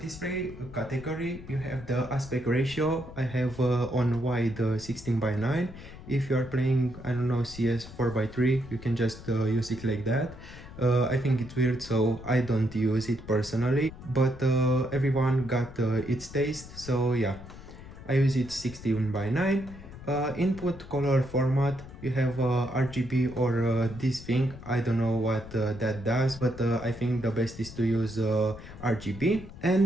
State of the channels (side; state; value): left; noise; rumble, 15 dB below the sound